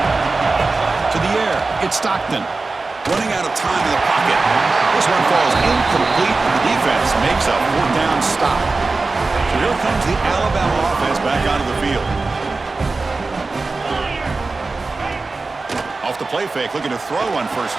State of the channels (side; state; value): left; quieter; 3.7 dB